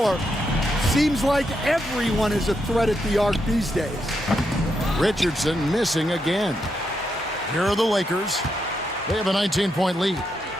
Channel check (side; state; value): both; normal; correlation 0.82